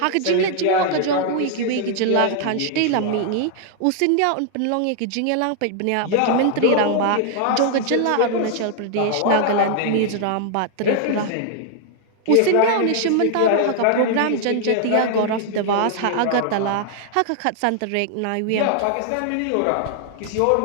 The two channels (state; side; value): different; both; correlation 0.00